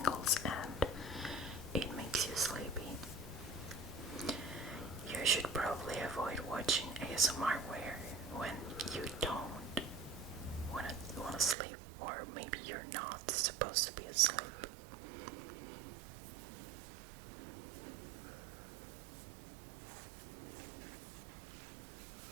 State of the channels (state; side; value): drops out; left; at 11.6 s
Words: and it makes you sleepy, you should probably avoid watching ASMR when you don't want to sleep, or maybe you're not supposed to be asleep.